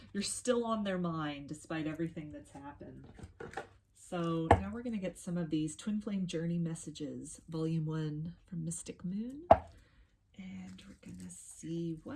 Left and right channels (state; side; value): identical; both; correlation 1.00